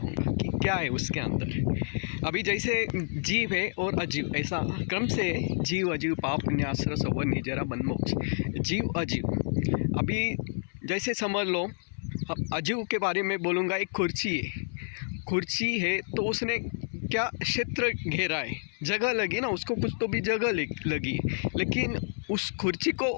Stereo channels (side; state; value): right; silent; 58 dB below the other